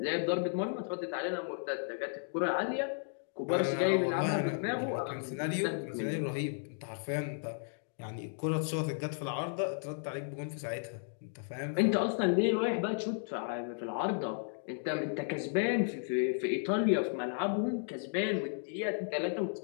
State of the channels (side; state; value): right; silent; digital silence